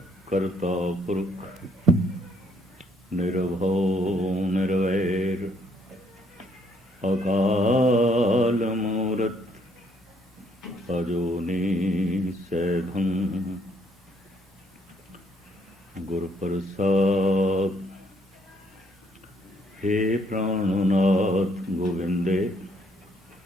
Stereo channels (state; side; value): normal; both; correlation 0.67